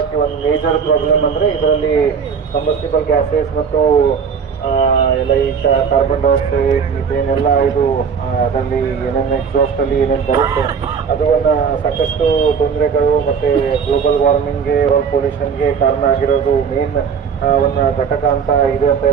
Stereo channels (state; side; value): quieter; left; 6.4 dB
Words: ಒಂದು ಮೇಜರ್ ಪ್ರಾಬ್ಲಮ್ ಅಂದ್ರೆ ಇದರಲ್ಲಿ ಕಂಬಸ್ಟಿಬಲ್ ಗ್ಯಾಸಸ್ ಮತ್ತು ಎಲ್ಲ ಈ ಕಾರ್ಬನ್ ಡೈಆಕ್ಸೈಡ್, ಮಿಥೇನ್ ಎಲ್ಲ ಇದು ಅದರಲ್ಲಿ ಏನೇನು ಎಕ್ಸಾಸ್ಟ್ ಅಲ್ಲಿ ಏನೇನು ಬರುತ್ತೆ ಅದು ಒಂದು ಸಾಕಷ್ಟು ತೊಂದರೆಗಳು ಮತ್ತೆ ಗ್ಲೋಬಲ್ ವಾರ್ಮಿಂಗ್ಗೆ, ಏರ್ ಪೊಲ್ಯೂಷನ್ಗೆ ಕಾರಣ ಆಗಿರೋದು ಮೇನ್ ಒಂದು ಘಟಕ ಅಂತ ಇದೆ ಅಂತ